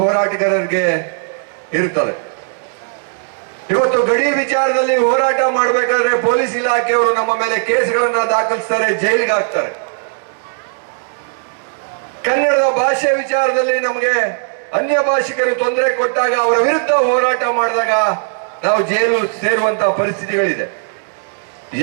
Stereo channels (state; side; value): silent; left; digital silence